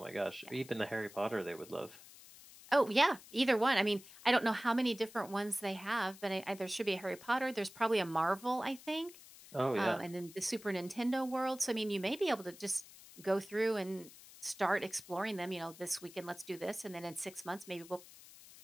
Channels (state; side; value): noise; left; hiss, 19 dB below the sound